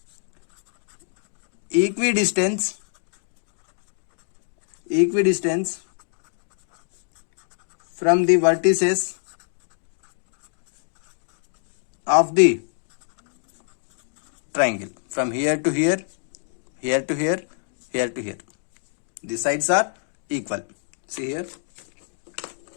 equidistance from the vertices of the triangle, from here to here, here to here, here to here. The sides are equal. See here,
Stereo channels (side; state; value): right; silent; digital silence